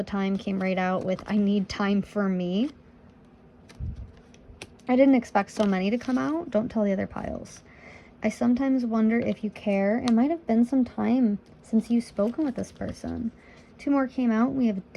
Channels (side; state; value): both; identical; correlation 1.00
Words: time came right out with, I need time for me. I didn't expect so many to come out. Don't tell the other piles. I sometimes wonder if you care. It might have been some time since you've spoken with this person. Two more came out. We have